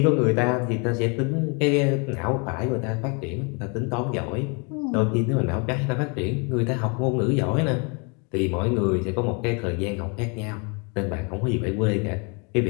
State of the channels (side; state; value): right; quieter; 33.4 dB